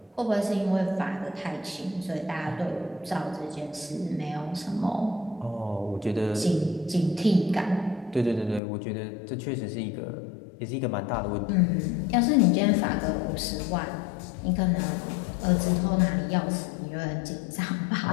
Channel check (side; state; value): right; drops out; at 8.6 s